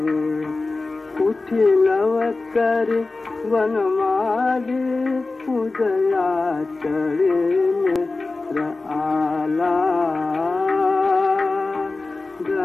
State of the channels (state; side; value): quieter; right; 3.5 dB